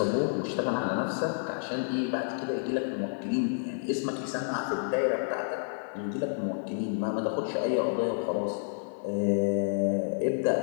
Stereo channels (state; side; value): silent; right; 58 dB below the other